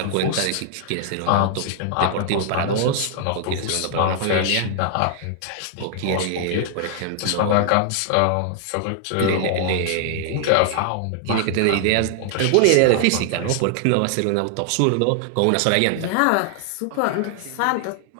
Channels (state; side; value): different; both; correlation 0.00